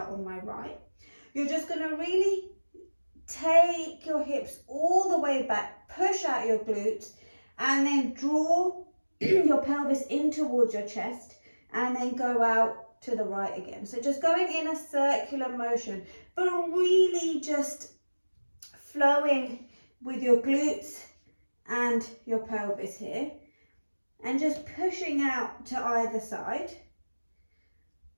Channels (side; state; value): both; inverted; correlation -1.00